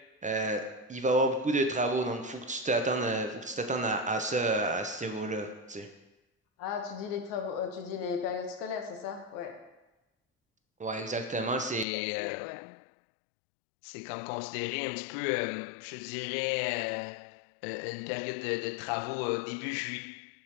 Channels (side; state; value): right; drops out; at 11.9 s